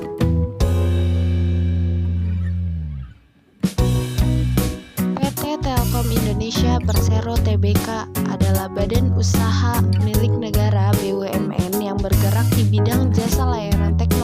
Telkom Indonesia Persero Tbk adalah badan usaha milik negara BUMN yang bergerak di bidang jasa layanan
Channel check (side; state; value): both; identical; correlation 1.00